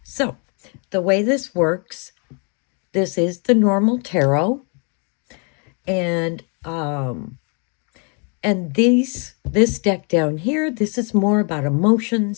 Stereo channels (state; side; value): quieter; right; 37.9 dB